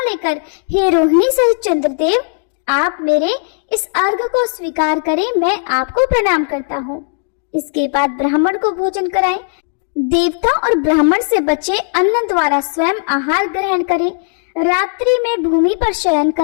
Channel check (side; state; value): right; silent; digital silence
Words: लेकर हे रोहिणी सहित चंद्रदेव, आप मेरे इस अर्घ को स्वीकार करें, मैं आपको प्रणाम करता हूँ। इसके बाद ब्राह्मण को भोजन कराएं। देवता और ब्राह्मण से बचे अन्न द्वारा स्वयं आहार ग्रहण करें। रात्रि में भूमि पर शयन